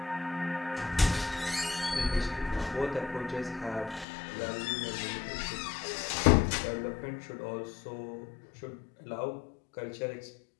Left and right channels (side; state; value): right; drops out; at 4.0 s